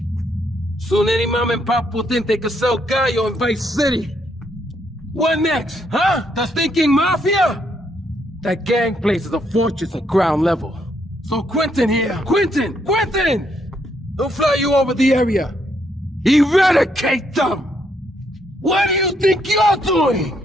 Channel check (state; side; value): normal; both; correlation 0.74